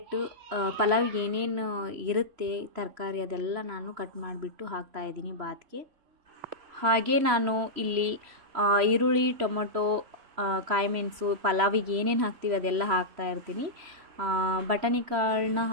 ಪಲಾವಿಗೆ ಏನೇನು ಇರುತ್ತೆ ತರಕಾರಿ ಅದೆಲ್ಲ ನಾನು ಕಟ್ ಮಾಡಿಬಿಟ್ಟು ಹಾಕ್ತಾಯಿದ್ದೀನಿ ಬಾತ್ಗೆ. ಹಾಗೆ ನಾನು ಇಲ್ಲಿ ಈರುಳ್ಳಿ, ಟೊಮೊಟೊ, ಕಾಯಿಮೆಣಸು, ಪಲಾವಿಗೆ ಏನೇನು ಹಾಕ್ತೀವಿ ಅದೆಲ್ಲ ಹಾಕ್ತಾಯಿರ್ತೀನಿ. ಬಟಾಣಿ ಕಾಳನ್ನ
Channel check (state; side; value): late; left; 3.0 ms